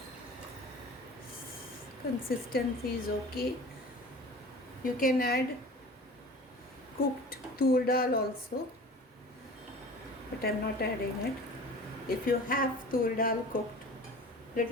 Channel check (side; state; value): both; normal; correlation 0.41